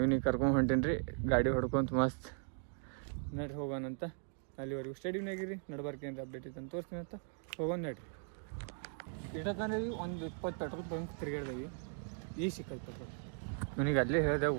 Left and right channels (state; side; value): silent; left; 52 dB below the other